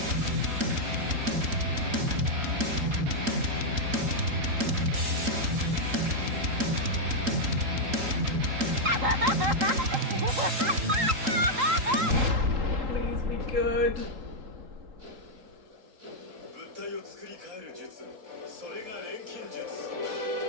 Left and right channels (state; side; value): late; left; 3.8 ms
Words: Please be good. 物体を作り変える術、それが錬金術。